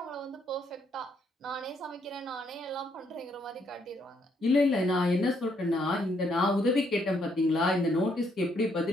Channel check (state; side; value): normal; both; correlation 0.72